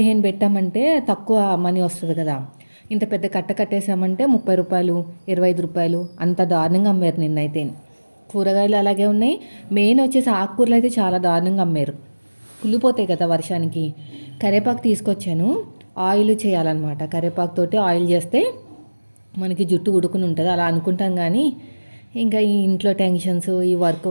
పెట్టామంటే తక్కువ మనీ వస్తది కదా! ఇంత పెద్ద కట్ట కట్టేసామంటే రూ. 30, రూ. 25 అంత దారుణంగా అమ్మారు నిన్నైతే. కూరగాయలు అలాగే ఉన్నాయి. మెయిన్ వచ్చేసి ఆకుకూరలు అయితే చాలా దారుణంగా అమ్మారు. కుళ్ళిపోతాయి కదా వర్షానికి. కరివేపాకు తీసుకొచ్చాను. ఆయిల్ చేయాలన్నమాట. కరివేపాకుతోటి ఆయిల్ చేస్తే మనకి జుట్టు ఊడుకుని ఉంటది. అలా అనుకుంటాం గానీ, ఇంకా ఈ ఇంట్లో టెన్షన్స్, ఈ వర్క్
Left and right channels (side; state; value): both; inverted; correlation -1.00